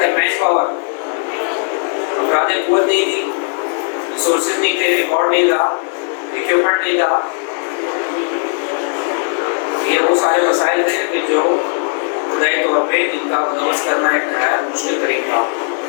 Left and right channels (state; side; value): silent; right; 58 dB below the other